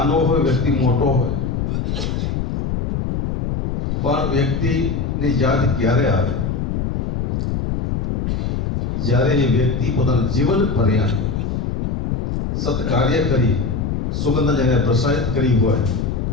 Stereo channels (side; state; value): left; noise; rumble, 1 dB below the sound